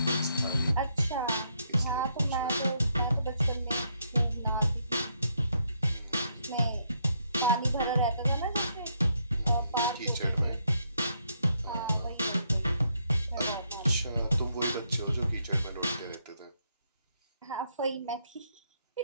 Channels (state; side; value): inverted; both; correlation -0.75